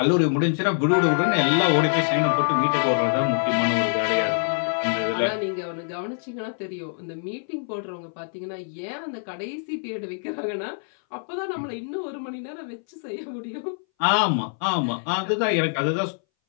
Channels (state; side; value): silent; right; 61 dB below the other